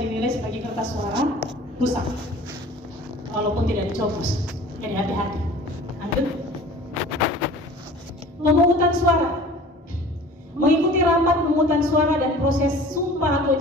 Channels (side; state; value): both; normal; correlation 0.44